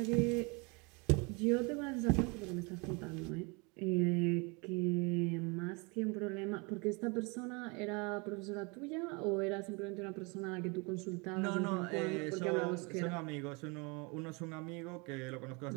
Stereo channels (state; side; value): quieter; left; 29.7 dB